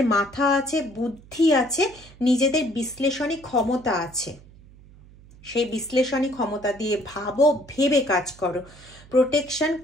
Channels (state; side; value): noise; right; hum, 23 dB below the sound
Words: মাথা আছে, বুদ্ধি আছে, নিজেদের বিশ্লেষণী ক্ষমতা আছে, সেই বিশ্লেষণী ক্ষমতা দিয়ে ভাবো, ভেবে কাজ করো। প্রোটেকশন